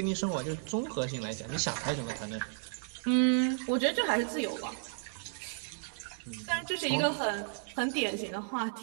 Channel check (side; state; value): left; silent; digital silence